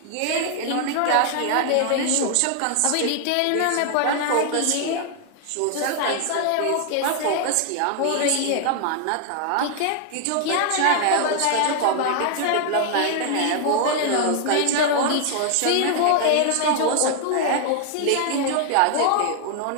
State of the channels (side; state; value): both; different; correlation 0.00